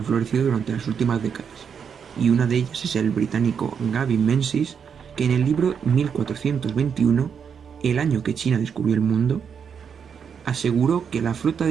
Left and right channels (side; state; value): left; quieter; 7.0 dB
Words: florecido durante las últimas décadas, y una de ellas es el británico Gavin Menzies, que en el libro 1421, el año que China descubrió el mundo, aseguró que la flota